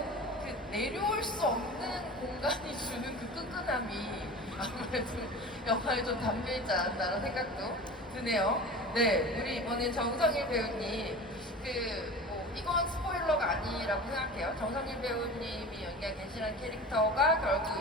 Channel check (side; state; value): both; normal; correlation 0.35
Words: 그 내려올 수 없는 공간이 주는 그 끈끈함이 아무래도 영화에 좀 담겨있지 않았나라는 생각도 드네요. 네, 우리 이번엔 정성일 배우님, 이건 스포일러가 아니라고 생각해요. 정성일 배우님이 연기한 겐시라는 캐릭터가 결국